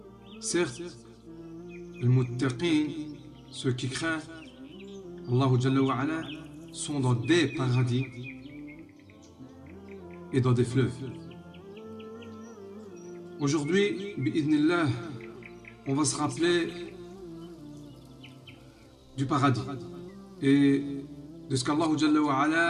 Certes, les muttaqin, ceux qui craignent Allah Jalla wa Ala, sont dans des paradis et dans des fleuves. Aujourd'hui, bi'idhnillah, on va se rappeler du paradis et de ce qu'Allah Jalla wa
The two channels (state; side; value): identical; both; correlation 1.00